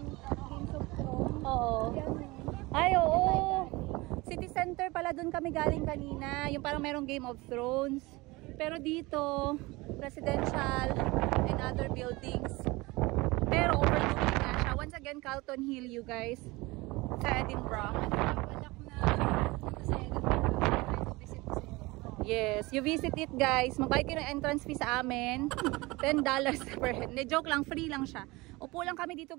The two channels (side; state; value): left; quieter; 22.6 dB